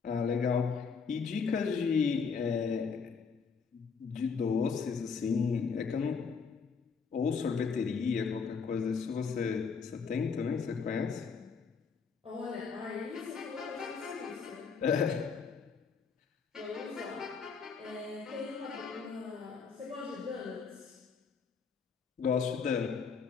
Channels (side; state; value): right; quieter; 5.6 dB